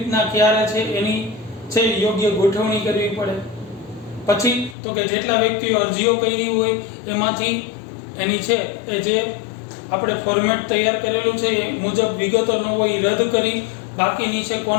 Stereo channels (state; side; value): drops out; right; at 4.8 s